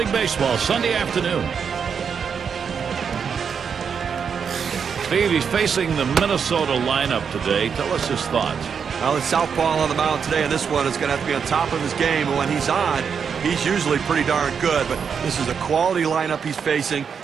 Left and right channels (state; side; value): quieter; left; 6.6 dB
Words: Baseball Sunday afternoon. Steve, he's facing the Minnesota lineup today. Tell us his thoughts. Well, it's southpaw on the mound today, and this one is going to have to be on top of his game. And when he's on, he's usually pretty darn good. But this is a quality lineup he's facing,